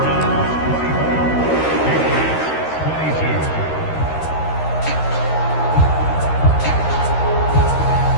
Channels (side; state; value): right; late; 13 ms